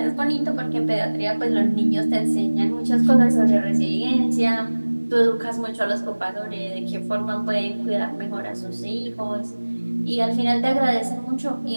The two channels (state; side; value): inverted; both; correlation -1.00